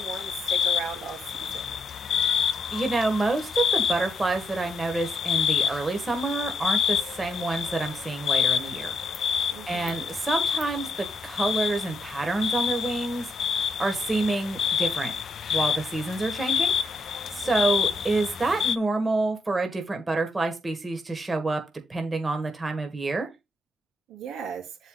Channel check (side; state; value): both; normal; correlation 0.79